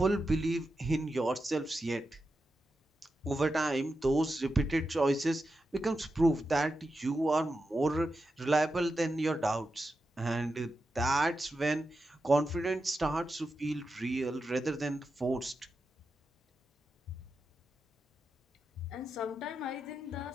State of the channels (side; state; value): both; normal; correlation 0.89